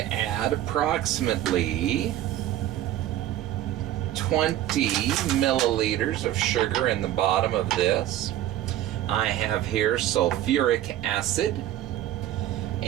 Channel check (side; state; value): left; quieter; 13.1 dB